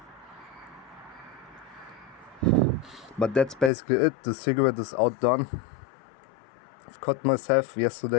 But that's basically it. The cigarette is outdone. I've cut myself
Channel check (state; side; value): drops out; right; at 3.7 s